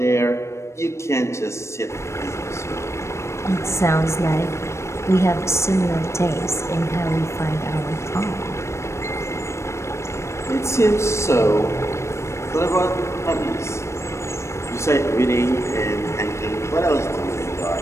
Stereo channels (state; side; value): late; right; 0.13 ms